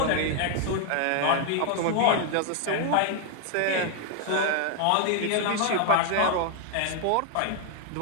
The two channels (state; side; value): different; both; correlation 0.00